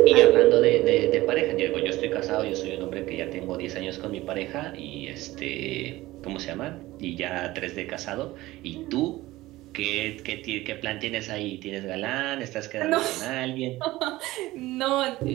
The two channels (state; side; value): quieter; left; 17.9 dB